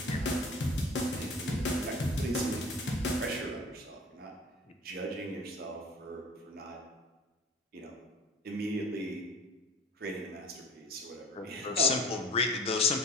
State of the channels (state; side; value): normal; both; correlation 0.42